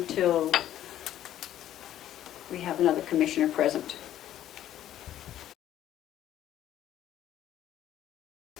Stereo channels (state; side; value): quieter; right; 12.0 dB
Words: we have another commissioner present.